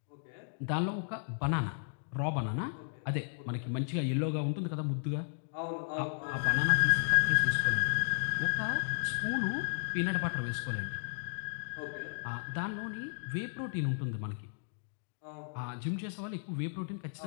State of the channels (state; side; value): silent; right; digital silence